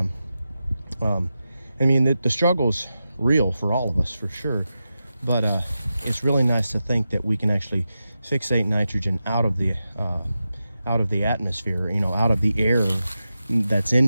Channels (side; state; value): both; inverted; correlation -0.91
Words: I mean, the struggle's real for all of us, for sure. But it's really nice to think that we can actually fixate nitrogen out of the atmosphere, out of the air that's